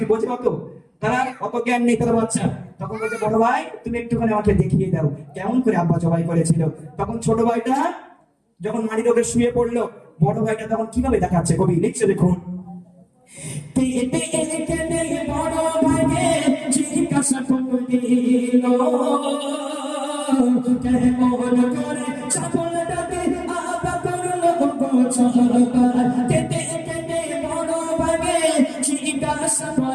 বোঝে অত তারা অত জ্ঞান নেই তারা বাচ্চা তখন বলছে বড় ভাই তুমি একটুখানি আমাকে দেখিয়ে দাও কেমন করে আব্বা জবাই করেছিল তখন ছোট ভাইটা যখন মাটির ওপরে শুয়ে পড়লো বড় ভাইটা তখন কিভাবে দেখাচ্ছে কবি লিখছে দেখুন বড় ভাইকে জিজ্ঞাসা করল কেমন করে ছাগলটাকে আব্বা করলো কেটে কেটে বড় ভাইকে জিজ্ঞাসা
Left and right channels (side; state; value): both; identical; correlation 1.00